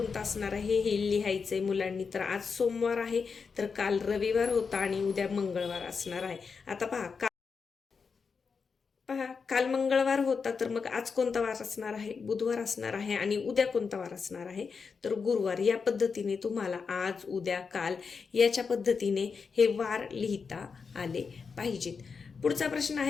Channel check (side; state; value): right; quieter; 5.4 dB